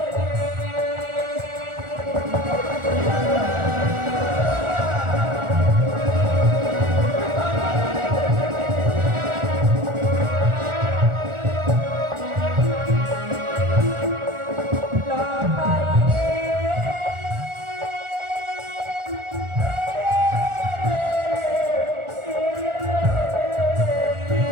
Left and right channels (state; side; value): late; left; 1.4 ms